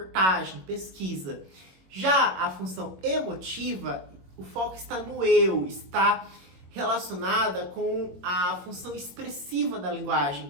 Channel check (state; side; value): late; left; 21 ms